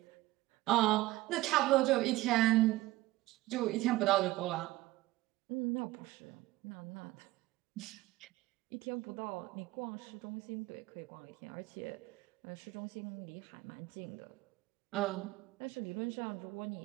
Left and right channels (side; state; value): left; quieter; 18.3 dB